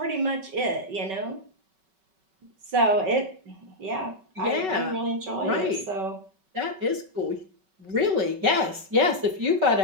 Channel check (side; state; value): left; late; 5.3 ms